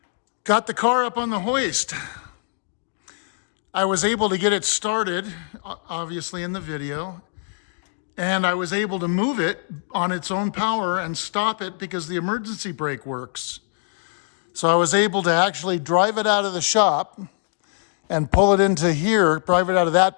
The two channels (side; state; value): right; silent; 63 dB below the other